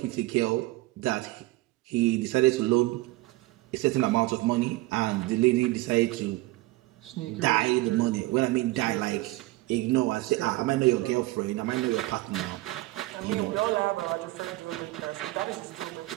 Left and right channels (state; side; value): quieter; left; 19.5 dB